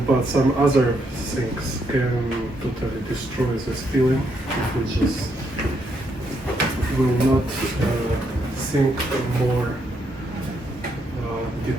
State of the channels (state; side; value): normal; both; correlation 0.76